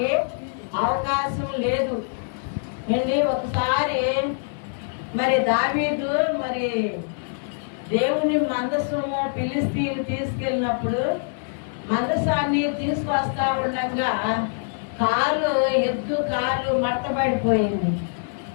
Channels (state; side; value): silent; right; 62 dB below the other